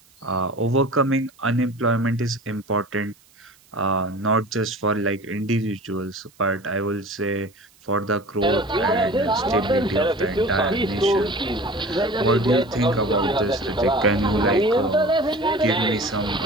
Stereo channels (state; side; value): noise; right; hiss, 30 dB below the sound